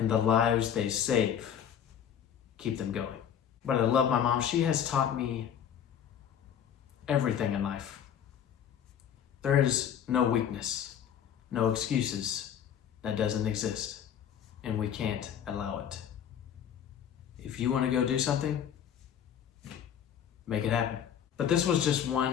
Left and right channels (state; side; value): quieter; right; 9.0 dB